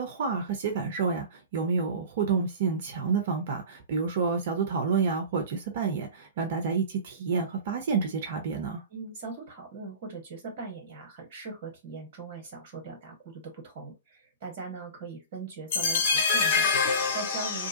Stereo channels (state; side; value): inverted; both; correlation -0.34